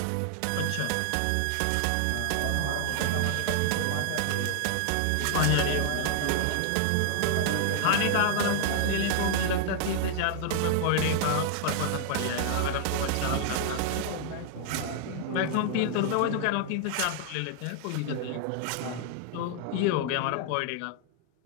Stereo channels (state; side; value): different; both; correlation 0.00